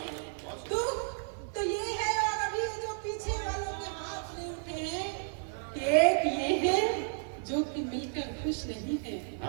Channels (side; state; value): left; silent; digital silence